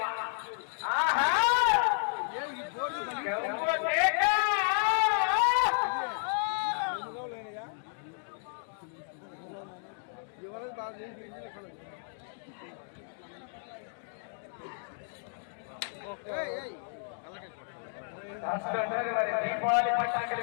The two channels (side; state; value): right; silent; digital silence